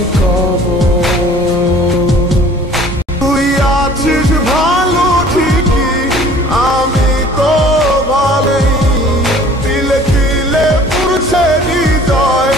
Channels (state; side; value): normal; both; correlation 0.50